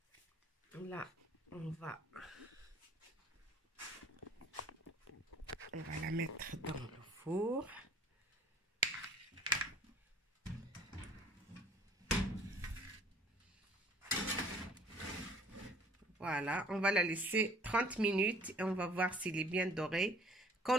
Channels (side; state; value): both; normal; correlation 0.53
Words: Là, on va la mettre dans le four. Voilà, on va la laisser 30 minutes et on va voir s'il est bien doré. Quand